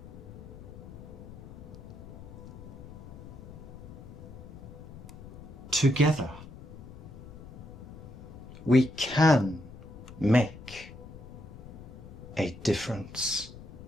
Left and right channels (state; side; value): noise; left; rumble, 14 dB below the sound